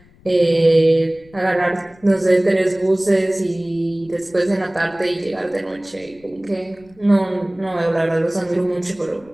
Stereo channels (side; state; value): left; noise; rumble, 28 dB below the sound